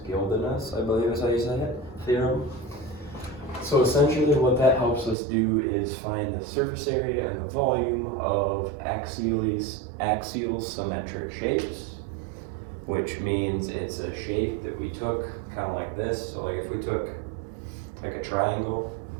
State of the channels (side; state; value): left; drops out; at 5.2 s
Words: Guldinas, I believe is how you say it, theorem. So essentially what that helps us do is find the surface area and the volume of axial symmetric shapes, which means it's a shape that we took kind of like this. So like if we took like a triangle